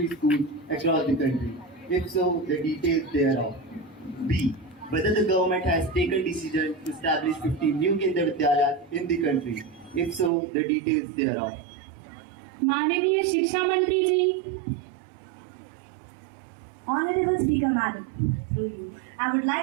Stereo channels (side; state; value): left; drops out; at 10.3 s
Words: schools across the country? If so, the details thereof. B. Whether the government has taken decision to establish 50 new Kendra Vidyalayas in the country? If so, the details thereof. माननीय शिक्षा मंत्री जी। Honorable Speaker Madam, through you, I would